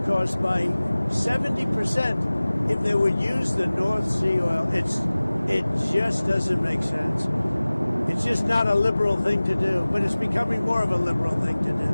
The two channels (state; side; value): inverted; both; correlation -0.99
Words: costs by 70% if they would use the North Sea oil. It just doesn't make sense. It's just not a liberal thing to do, but it's becoming more of a liberal thing to do.